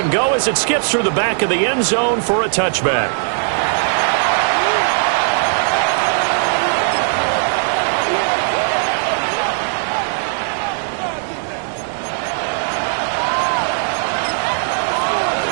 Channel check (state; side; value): silent; left; digital silence